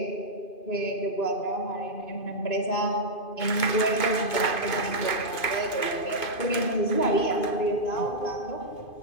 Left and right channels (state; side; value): late; right; 2.5 ms